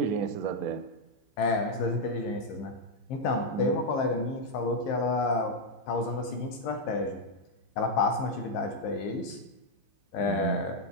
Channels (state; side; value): late; right; 15 ms